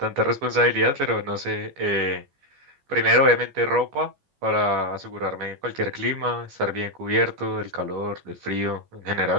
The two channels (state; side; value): late; left; 14 ms